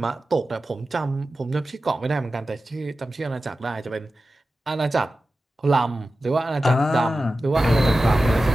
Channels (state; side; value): normal; both; correlation 0.94